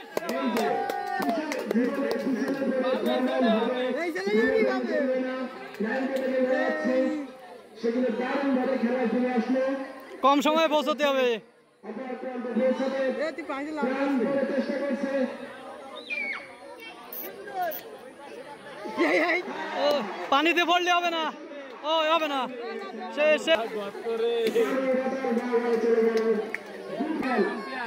সেগুলো দারুণ ভাবে খেলায় ফিরে আসলো। কম সময়ে পৌঁছতে হবে। চেষ্টা করছে ও, পানিতে পড়লে হবে না, ও হবে না, সে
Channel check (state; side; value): identical; both; correlation 1.00